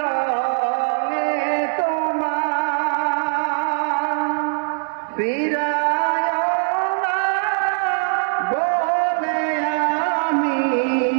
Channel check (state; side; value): silent; left; 65 dB below the other